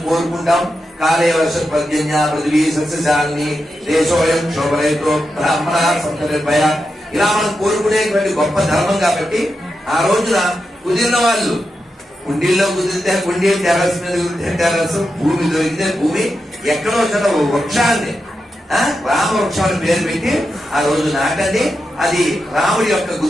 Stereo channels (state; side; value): normal; both; correlation 0.88